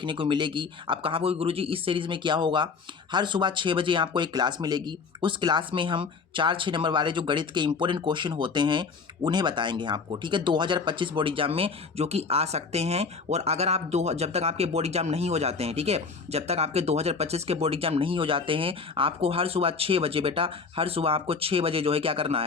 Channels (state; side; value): quieter; right; 5.0 dB